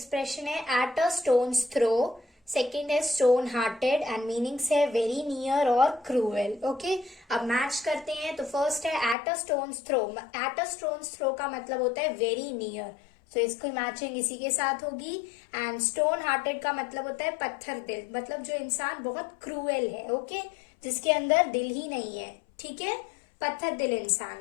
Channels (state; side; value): drops out; right; at 9.2 s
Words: है at a stone's throw, second है स्टोन हार्टेड एंड मीनिंग्स है वेरी नियर और क्रूएल। ओके, अब मैच करते हैं। तो फर्स्ट है at a stone's throw. At a stone's throw का मतलब होता है वेरी नियर, तो इसकी मैचिंग इसी के साथ होगी। एंड स्टोन हार्टेड का मतलब होता है पत्थर दिल, मतलब जो इंसान बहुत क्रूएल है। ओके, जिसके अंदर दिल ही नहीं है। ठीक है, पत्थर दिल इंसान।